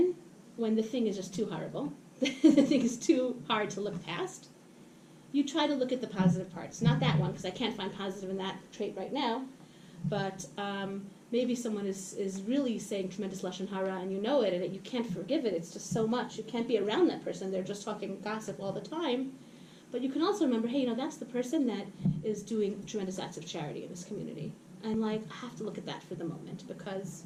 when the thing is just too horrible, the thing is too hard to look past, you try to look at the positive parts. Not that one, because I can't find positive in that trait right now, but maybe someone is really saying tremendous lashon hara and you know it, and you can't forgive it. It's just so much. You can't be around that person. They're just talking gossip all the time. But you can also remember, hey, that's the person that is doing tremendous acts of charity in this community. And, I have to look at that for the moment because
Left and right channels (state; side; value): identical; both; correlation 1.00